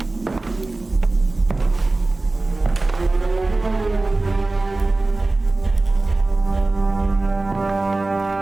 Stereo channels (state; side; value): quieter; left; 3.1 dB